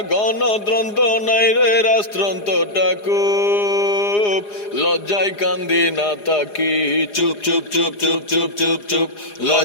গণতন্ত্র নাই রে রাষ্ট্রতন্ত্রটাকু লজ্জায় কান্দি না তাকি চুপ চুপ চুপ চুপ চুপ চুপ চুপ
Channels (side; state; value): right; late; 4.9 ms